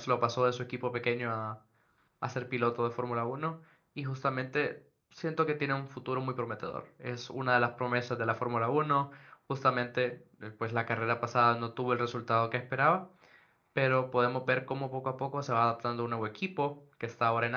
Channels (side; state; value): both; identical; correlation 1.00